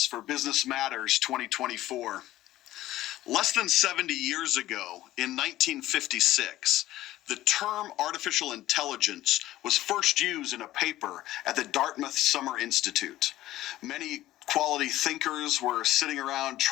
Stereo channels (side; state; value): right; quieter; 15.1 dB